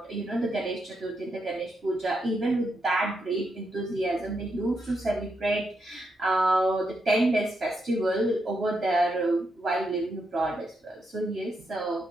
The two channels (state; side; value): normal; both; correlation 0.82